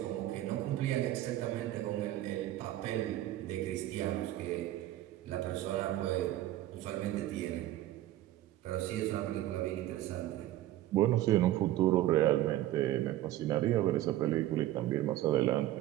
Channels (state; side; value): quieter; left; 14.4 dB